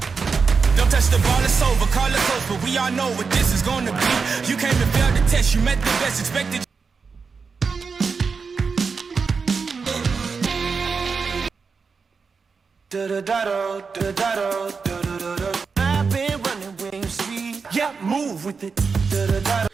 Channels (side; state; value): left; quieter; 5.1 dB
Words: Don't touch the ball, it's over. Call it close, but we all know what this is gonna be. You came and failed the test, you met the best, expected. I've been running Wing Street. Yeah, move with it.